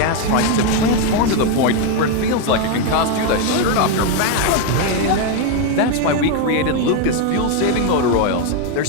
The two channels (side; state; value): both; different; correlation 0.01